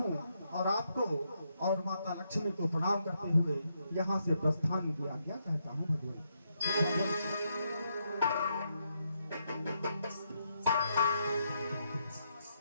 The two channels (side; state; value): both; inverted; correlation -0.79